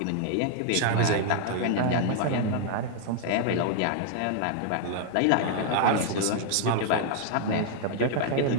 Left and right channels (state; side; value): different; both; correlation 0.00